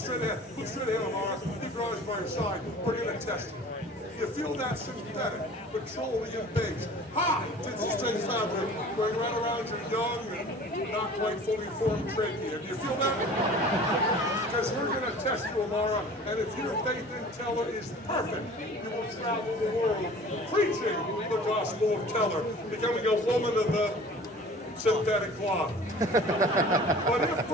ahead. Look straight ahead, Amara. Keep your eyes by your side. We're going to test you. You feel that synthetic, petroleum base, hot to the straight fabric going right around your young and not quite fully formed trachea. Do you feel that? Because we're going to test you, Amara, and if your faith in Teller is perfect, you will travel the world preaching the gospel of Teller, becoming a woman of the synthetic cloth. But if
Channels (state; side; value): normal; both; correlation 0.45